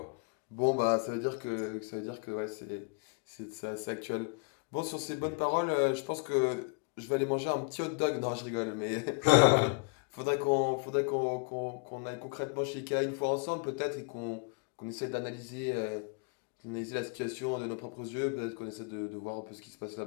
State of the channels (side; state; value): right; quieter; 33.3 dB